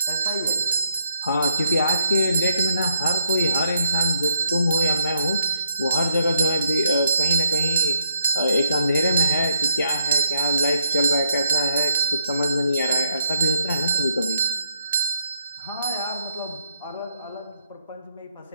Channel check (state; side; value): inverted; both; correlation -0.75